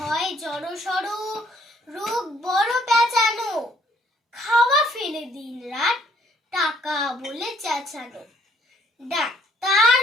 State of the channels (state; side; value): normal; both; correlation 0.64